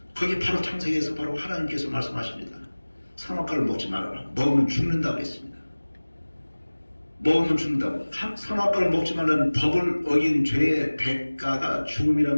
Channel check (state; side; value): inverted; both; correlation -1.00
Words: 거기 바로 창세기에서 바로 하나님께서 말씀하십니다. 선악과를 먹지 말아라. 먹으면 죽는다고 했습니다. 먹으면 죽는다고. 선악과를 먹지 말라는 법을 어긴 죄의 대가가